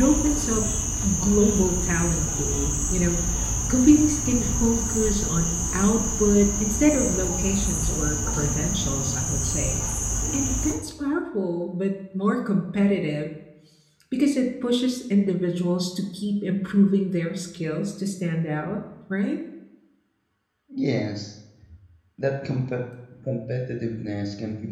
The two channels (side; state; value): both; identical; correlation 1.00